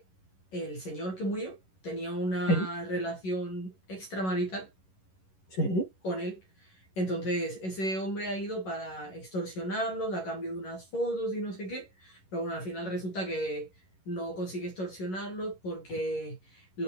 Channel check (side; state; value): right; late; 11 ms